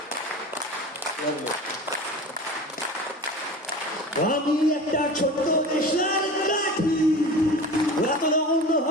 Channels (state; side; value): normal; both; correlation 0.35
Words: আমি একটা ছোট্ট দেশের কাঠি, এত রঙ